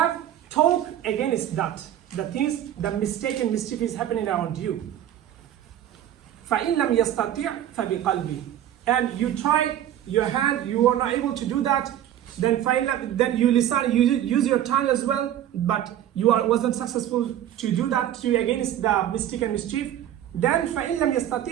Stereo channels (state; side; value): quieter; left; 11.5 dB